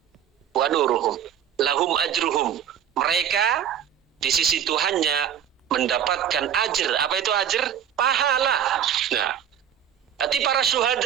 wa nuruhum. Lahum ajruhum, mereka di sisi Tuhannya mendapatkan ajr. Apa itu ajr? Pahala. Nah, berarti para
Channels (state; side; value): quieter; left; 9.2 dB